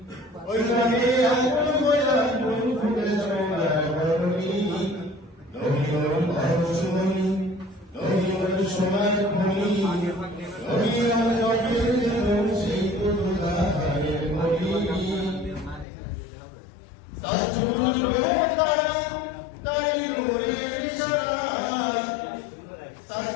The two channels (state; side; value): drops out; right; at 15.9 s